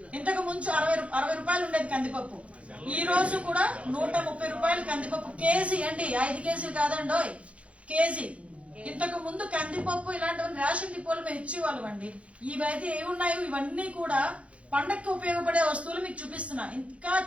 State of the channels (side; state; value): left; late; 0.063 ms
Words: ఇంతకు ముందు 60 రూపాయలు ఉండేది కందిపప్పు. ఈ రోజు కూడా 130 రూపాయలు కందిపప్పు కేజీ అండి. 5 కేజీలు కాదండి, కేజీ. ఇంతకు ముందు కందిపప్పు ఇలాంటివన్నీ రేషన్ డిపోలు మేము ఇచ్చేవాళ్ళం అండి. ఇవైతే ఏమున్నాయో ఇవన్నీ కూడా పండక్కి ఉపయోగపడే వస్తువులు మీకు చూపిస్తున్నా. ఇంకా